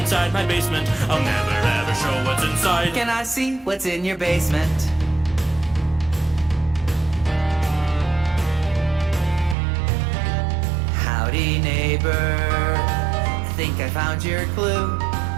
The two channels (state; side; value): drops out; left; at 9.6 s